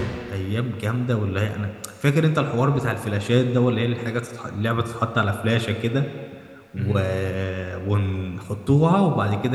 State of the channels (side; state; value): both; identical; correlation 1.00